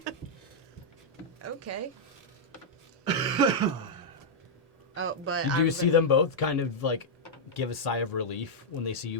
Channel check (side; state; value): both; normal; correlation -0.06